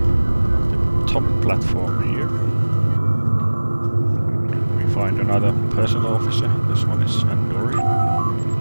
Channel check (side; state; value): both; inverted; correlation -1.00